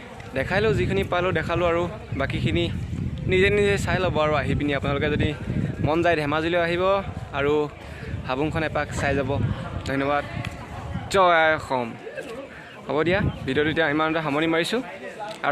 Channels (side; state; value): both; identical; correlation 1.00